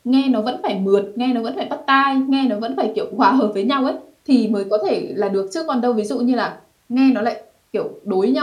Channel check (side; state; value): both; identical; correlation 1.00